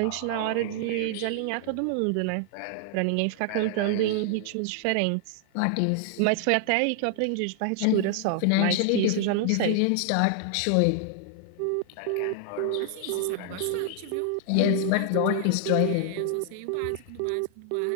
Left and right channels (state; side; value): different; both; correlation 0.00